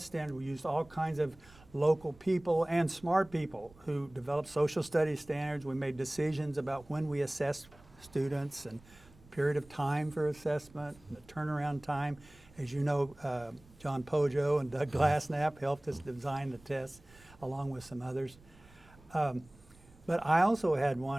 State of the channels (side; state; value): right; noise; rumble, 25 dB below the sound